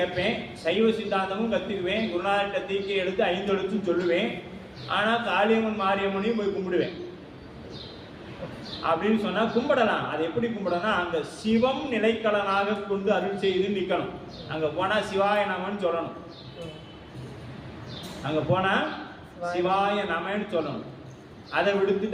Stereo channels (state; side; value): identical; both; correlation 1.00